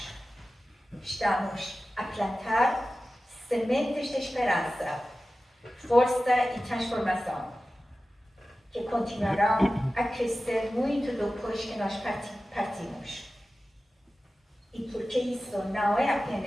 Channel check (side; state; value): both; normal; correlation 0.95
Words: Estamos a plantar sementes de esperança, força e transformação, que continuarão a crescer muito depois que nós partimos. E porque isso não é